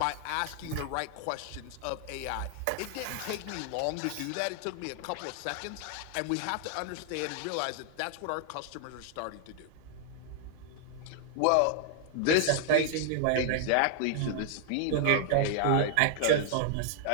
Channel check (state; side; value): different; both; correlation 0.00